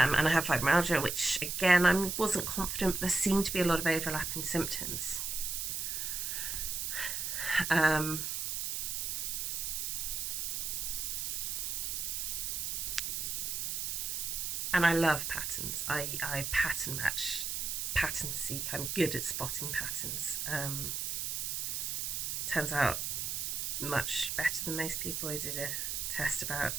I have fibromyalgia, which again I wasn't confident, but there seemed to be a lot of overlap in symptoms. And I love patterns. I pattern match, pattern seek. I'm good at spotting patterns. Turns out much better than most people. I did a test about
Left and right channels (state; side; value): noise; right; hiss, 2 dB below the sound